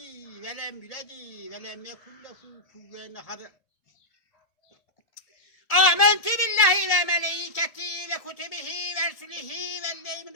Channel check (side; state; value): right; late; 1.7 ms